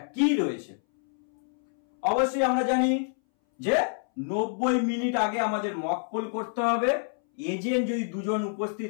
কি রয়েছে? অবশ্যই আমরা জানি যে 90 মিনিট আগে আমাদের মক পোল করতে হবে। এজেন্ট যদি 2 জন উপস্থিত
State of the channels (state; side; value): silent; right; 60 dB below the other